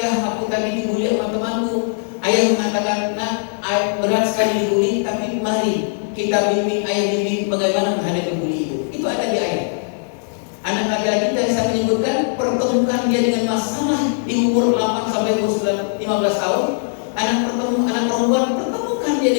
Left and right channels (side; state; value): right; silent; digital silence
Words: "Ya, aku tadi dibully sama temanku." Ayah mengatakan, "Nak, berat sekali dibully, tapi mari kita bimbing, ayah bimbing bagaimana menghadapi bully itu." Itu ada di ayah. Anak laki-laki tadi saya menyebutkan pertemukan dia dengan masalah di umur 8 sampai umur 15 tahun. Anak perempuan pertemukan dia